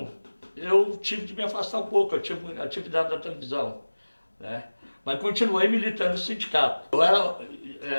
eu tive de me afastar um pouco, eu tive atividade da televisão, né? Mas continuei militando no sindicato. Eu era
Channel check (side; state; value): both; inverted; correlation -1.00